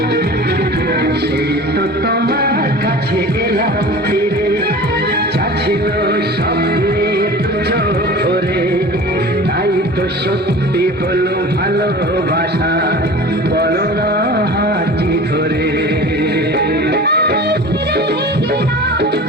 সেই তো তোমার কাছে এলাম ফিরে, চাচ্ছিল স্বপ্নে চোখ ভরে, তাই তো সত্যি হলো ভালোবাসা, বলো না হাতি ধরে।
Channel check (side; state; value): both; normal; correlation 0.38